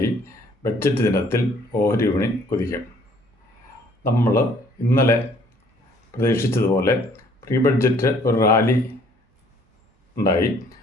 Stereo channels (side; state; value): both; normal; correlation 0.60